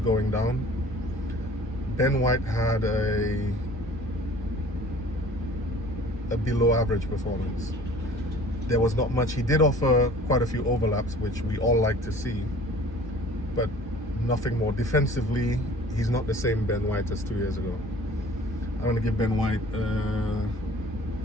down. Ben White had a below average performance. There was not much. He did offer quite a few overlaps, which we all like to see, but nothing more. Defensively, he's not the same Ben White as 2 years ago. I'm going to give Ben White, oh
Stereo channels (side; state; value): both; normal; correlation 0.48